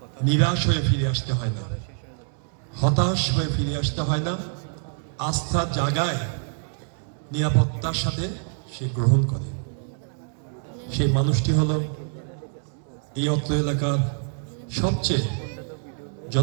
নিরাশ হয়ে ফিরে আসতে হয় না, হতাশ হয়ে ফিরে আসতে হয় না, আস্থার জায়গায় নিরাপত্তার সাথে সে গ্রহণ করে। সেই মানুষটি হলো এই অত্র এলাকার সবচেয়ে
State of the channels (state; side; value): silent; left; 61 dB below the other